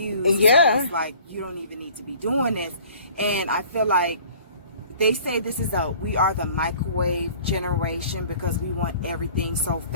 it's like you don't even need to be doing this. And I feel like they say we are the microwave generation because we want everything so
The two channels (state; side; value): inverted; both; correlation -0.50